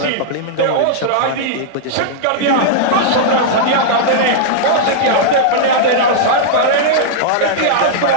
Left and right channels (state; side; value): different; both; correlation -0.02